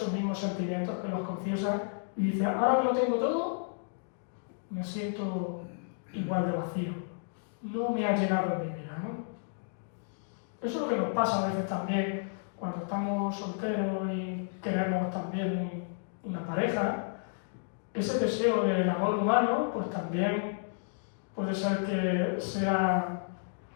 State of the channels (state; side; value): silent; right; digital silence